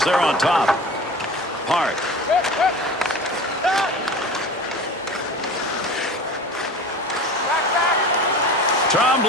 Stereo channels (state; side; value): normal; both; correlation 0.36